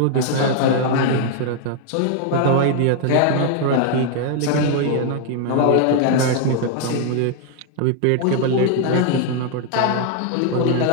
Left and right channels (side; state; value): both; different; correlation 0.00